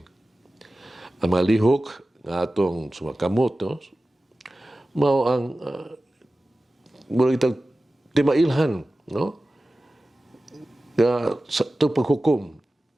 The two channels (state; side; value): normal; both; correlation 0.96